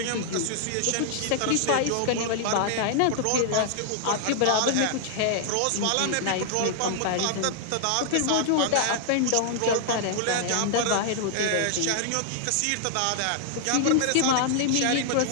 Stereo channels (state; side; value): different; both; correlation -0.01